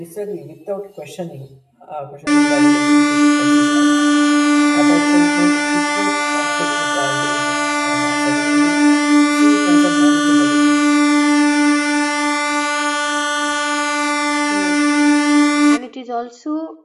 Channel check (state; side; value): identical; both; correlation 1.00